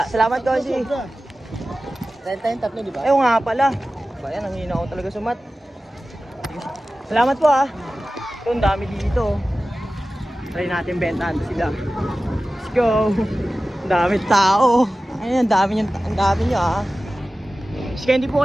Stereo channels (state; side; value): normal; both; correlation 0.95